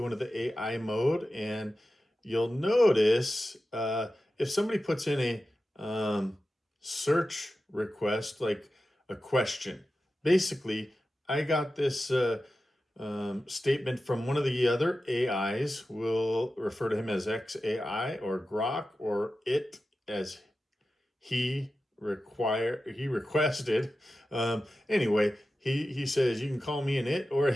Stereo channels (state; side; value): normal; both; correlation 0.93